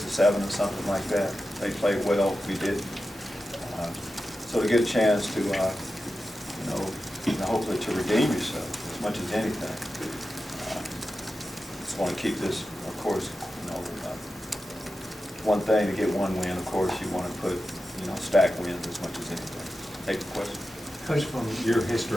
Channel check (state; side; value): normal; both; correlation 0.92